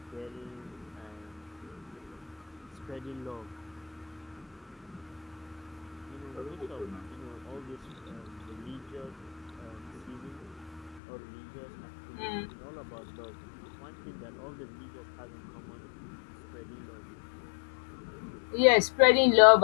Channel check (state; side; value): drops out; right; at 11.0 s